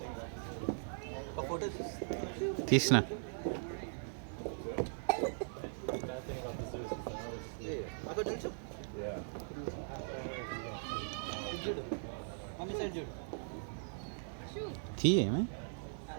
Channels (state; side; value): silent; left; digital silence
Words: తీసిన తీ ఏమే